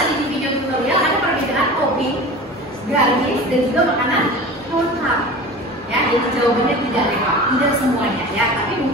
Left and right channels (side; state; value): both; normal; correlation 0.35